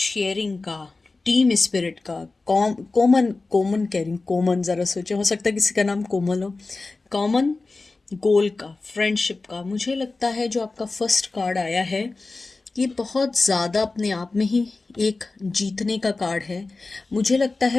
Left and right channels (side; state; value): right; quieter; 3.6 dB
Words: का, टीम स्पिरिट का, कॉमन कॉमन कह रही हूँ, कॉमन ज़रा सोचो, हो सकता है किसी का नाम कोमल हो। कॉमन गोल का, फ्रेंडशिप का। मुझे लगता है जो आपका फर्स्ट कार्ड आया है, ये बहुत ज़्यादा अपने आप में ही एक जीतने का कार्ड है। मुझे लगता